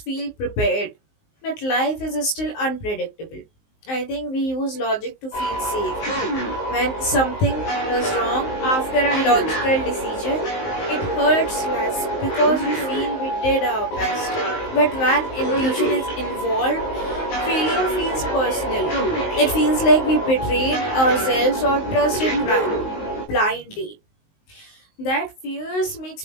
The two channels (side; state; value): right; late; 19 ms